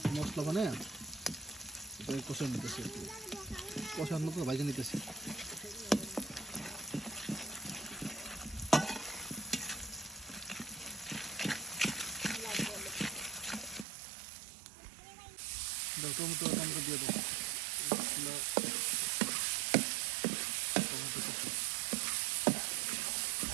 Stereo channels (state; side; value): drops out; left; at 13.9 s